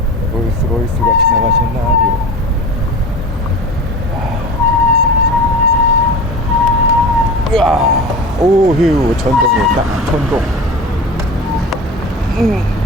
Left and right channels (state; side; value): normal; both; correlation 0.33